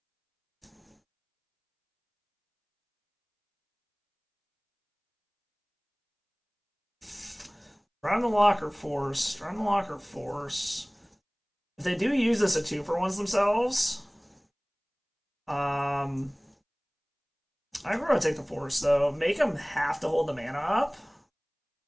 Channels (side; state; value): both; identical; correlation 1.00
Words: Drown the Lock or Force? Drown the Lock or Force? If they do use this at 2-for-1s themselves, I'm going to take the Force, though. Make them have to hold the mana up.